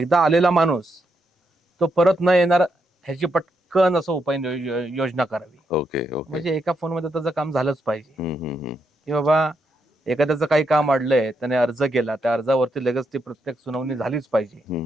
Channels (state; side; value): normal; both; correlation 0.80